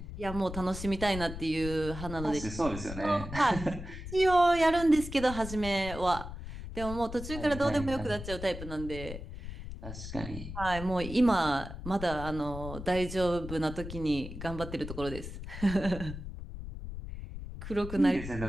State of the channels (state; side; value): noise; left; rumble, 9 dB below the sound